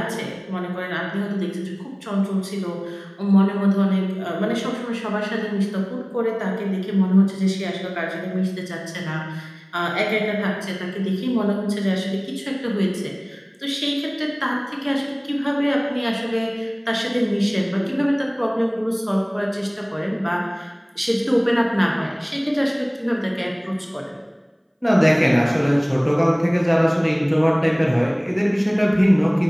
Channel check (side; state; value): both; identical; correlation 1.00